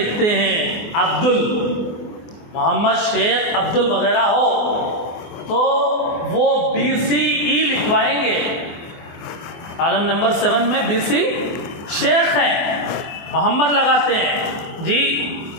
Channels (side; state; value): right; late; 24 ms